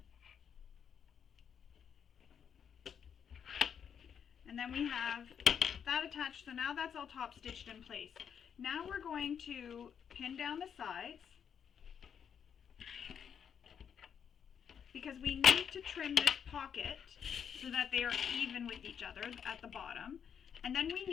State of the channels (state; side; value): quieter; right; 7.8 dB